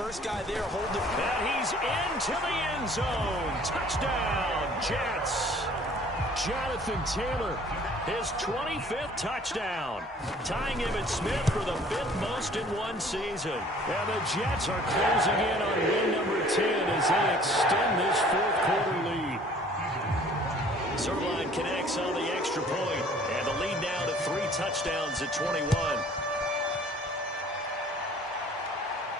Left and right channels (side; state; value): both; normal; correlation 0.53